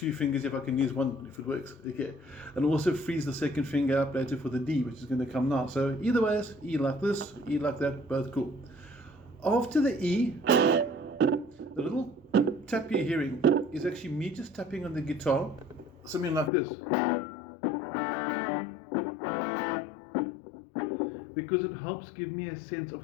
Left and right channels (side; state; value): right; drops out; at 16.5 s